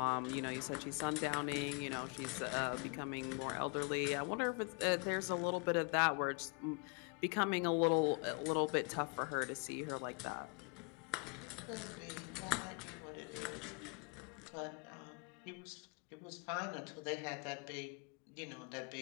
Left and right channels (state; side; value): quieter; right; 36.2 dB